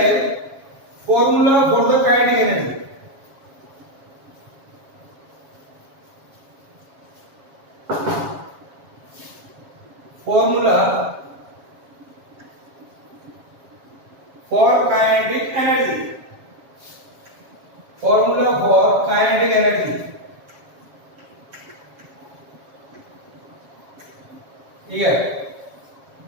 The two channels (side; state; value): left; late; 7.3 ms